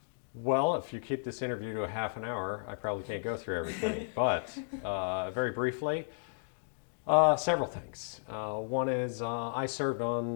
Well, if you keep this interview to a half an hour, I probably can't go through everything. But very briefly, several things. One is I served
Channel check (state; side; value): silent; right; digital silence